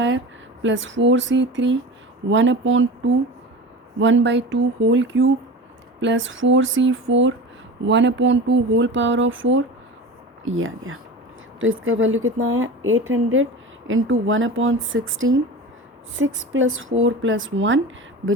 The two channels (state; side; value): normal; both; correlation 0.32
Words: plus 4C3 1/2 1/2 whole cube plus 4C4 1/2 whole power of 4, ये आ गया। तो इसका वैल्यू कितना आया 800 into 1/16 6 + 4 + 1